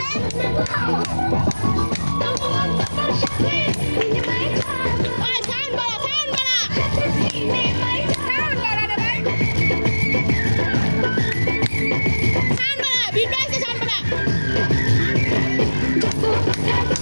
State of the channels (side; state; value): both; inverted; correlation -1.00